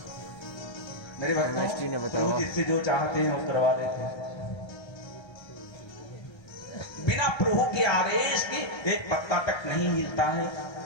मेरे केमिस्ट्री ने बताया, प्रभु जिससे जो चाहते हैं वो करवा लेते हैं। बिना प्रभु के आदेश के एक पत्ता तक नहीं हिलता है।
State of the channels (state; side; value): late; right; 1.3 ms